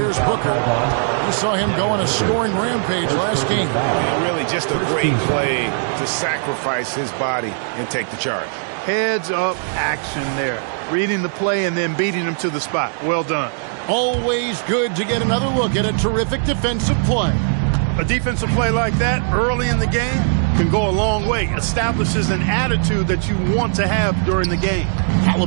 Booker. We saw him go on a scoring rampage last game. Really just a great play to sacrifice his body and take the charge. Heads up action there. Reading the play and then beating him to the spot. Well done. Always good to get another look at a terrific defensive play. A defensive play like that early in the game can go a long way. Establishes an attitude that you want to have during the game.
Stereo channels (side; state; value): left; silent; digital silence